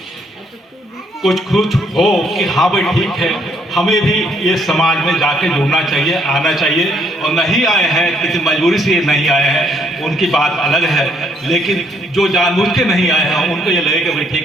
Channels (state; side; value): normal; both; correlation 0.69